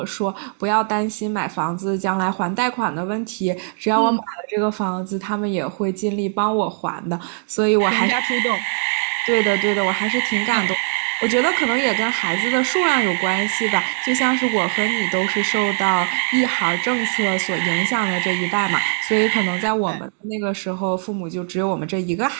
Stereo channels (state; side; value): silent; left; 56 dB below the other